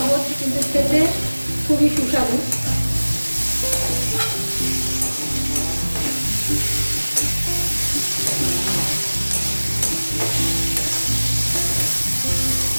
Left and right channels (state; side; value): inverted; both; correlation -1.00